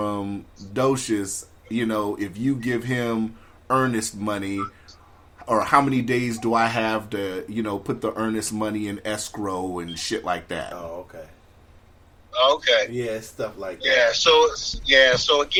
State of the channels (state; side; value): identical; both; correlation 1.00